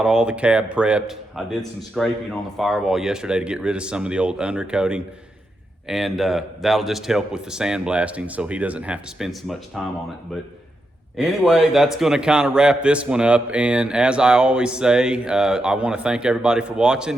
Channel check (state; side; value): normal; both; correlation 0.85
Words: all the cab prepped. I did some scraping on the firewall yesterday to get rid of some of the old undercoating, and that'll just help with the sandblasting so he doesn't have to spend so much time on it. But anyway, that's gonna kind of wrap this one up. And as I always say, I wanna thank everybody for